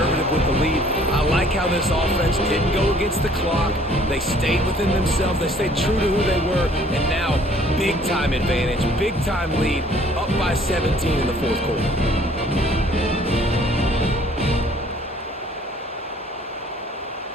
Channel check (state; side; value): normal; both; correlation 0.57